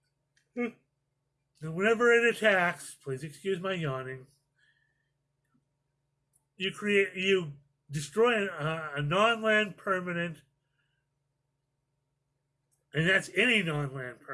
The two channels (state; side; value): identical; both; correlation 1.00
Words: and whenever it attacks, please excuse my yawning, you destroy a non-land permanent, and that's any non-land